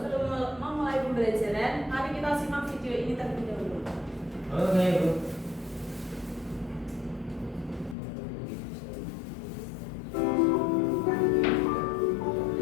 memulai pembelajaran, mari kita simak video ini terlebih dahulu. Oke, Bu.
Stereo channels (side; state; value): right; drops out; at 8.0 s